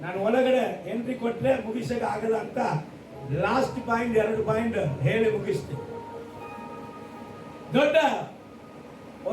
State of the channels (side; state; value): both; identical; correlation 1.00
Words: ನಾನು ಒಳಗಡೆ ಎಂಟ್ರಿ ಕೊಟ್ರೆ ಮುಗಿಸಕ ಆಗಲ್ಲ ಅಂತ ಲಾಸ್ಟ್ ಪಾಯಿಂಟ್ 2 ಪಾಯಿಂಟ್ ಹೇಳಿ ಮುಗಿಸ್ತೀನಿ. ದೊಡ್ಡ